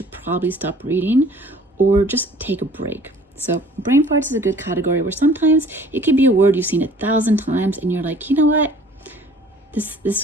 probably stop reading or just take a break. So brain farts is a good category where sometimes it could be a word you've seen 1,000 times and you're like, you know what?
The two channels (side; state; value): both; normal; correlation 0.52